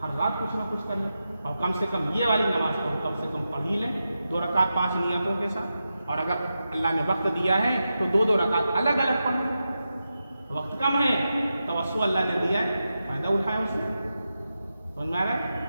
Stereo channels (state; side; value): inverted; both; correlation -0.90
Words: ہر رات کچھ نہ کچھ کر لیں، اور کم سے کم یہ والی نماز کو ہم کم سے کم پڑھ ہی لیں 2 رکعت 5 نیتوں کے ساتھ. اور اگر اللہ نے وقت دیا ہے تو 2 رکعت الگ الگ پڑھ لیں. وقت کم ہے، توسع اللہ نے دیا ہے، فائدہ اٹھائے اس نے. سمجھ میں آ رہا ہے؟